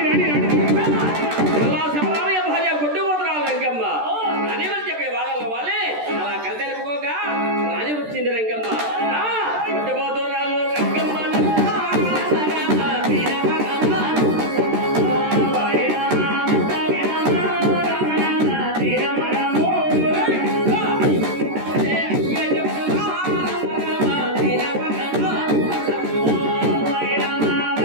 రాని రాని శబరామయ్య భార్య గుడ్డు పోతురాలు రంగమ్మ అని వాళ్ళు చెప్పే వాళ్ళ వాళ్ళే అలా కలితెలుపుకోగా రాని వచ్చింది రంగమ్మ. గుడ్డు పోతురాలు రంగమ్మ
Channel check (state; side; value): late; left; 13 ms